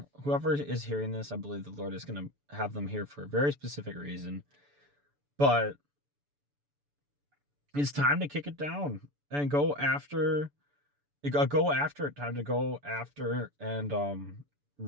whoever is hearing this, I believe the Lord is going to have them here for a very specific reason. But it's time to kick it down and go after it. Go after it. Time to go after and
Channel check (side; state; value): left; late; 6.9 ms